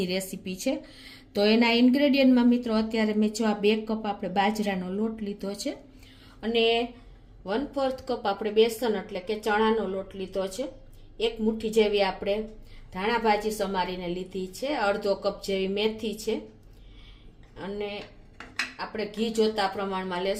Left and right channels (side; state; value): both; identical; correlation 1.00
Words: રેસીપી છે। તો એના ઇન્ગ્રેડિયન્ટમાં મિત્રો અત્યારે મેં જો આ 2 કપ આપણે બાજરાનો લોટ લીધો છે અને 1/4 કપ આપણે બેસન એટલે કે ચણાનો લોટ લીધો છે। 1 મુઠ્ઠી જેવી આપણે ધાણા ભાજી સમારીને લીધી છે, અડધો કપ જેવી મેથી છે અને આપણે ઘી જોતા પ્રમાણમાં